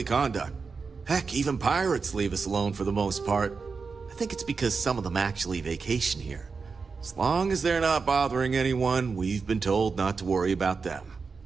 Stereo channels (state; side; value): quieter; left; 4.9 dB